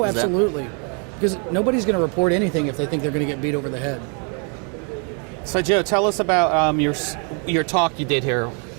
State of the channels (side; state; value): left; quieter; 38.8 dB